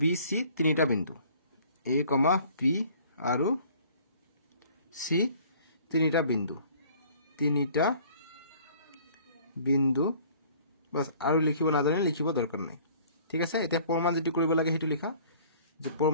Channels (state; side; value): inverted; both; correlation -0.54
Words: বি সি তিনিটা বিন্দু এ কমা পি আৰু সি তিনিটা বিন্দু বাস আৰু লিখিব নাজানিলে লিখিব দৰকাৰ নাই ঠিক আছে এতিয়া প্ৰমাণ যেটো কৰিব লাগে হেতু লিখা যে